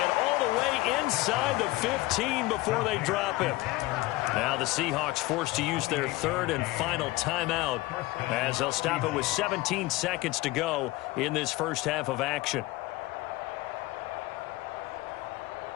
all the way inside the 15 before they drop him. Now the Seahawks forced to use their 3rd and final timeout as they'll stop it with 17 seconds to go in this first half of action.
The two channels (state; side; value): quieter; right; 19.4 dB